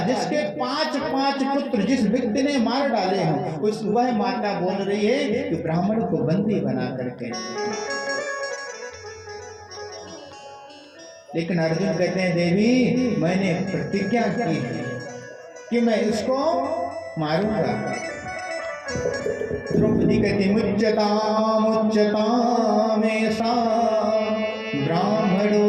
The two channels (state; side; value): identical; both; correlation 1.00